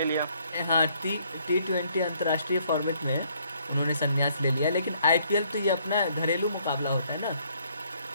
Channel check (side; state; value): both; inverted; correlation -0.66